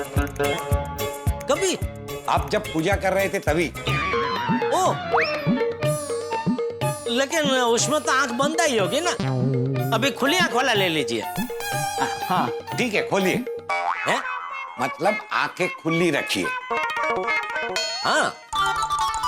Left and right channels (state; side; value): identical; both; correlation 1.00